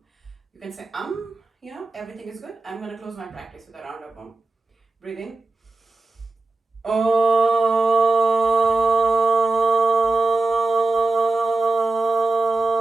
You can say you know, everything is good. I'm gonna close my practice with a round of Om. Breathe in.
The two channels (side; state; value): left; quieter; 3.3 dB